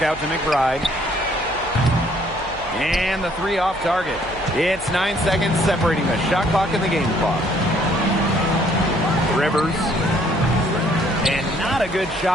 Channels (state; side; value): noise; right; hum, 18 dB below the sound